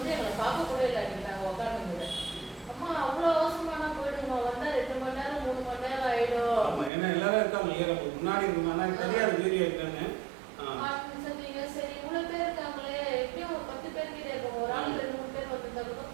எங்களை பார்க்க கூட இல்லை நாங்க உட்காந்துங்க. அம்மா அவ்வளவு அவசரமான போயிடுமா, வந்தா 2 மணி நேரம் 3 மணி நேரம் ஆயிடும். ஏன்னா எல்லாரும் இருக்காங்க முன்னாடி சொன்னீங்க. சரி இவ்வளவு பேர் இருக்காங்களே, எப்படியும் ஒரு 10 பேர் கிட்ட இருக்கோம், ஒரு ஆள் 2-3 பேர் வந்துருந்தாலும்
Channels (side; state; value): left; drops out; at 6.9 s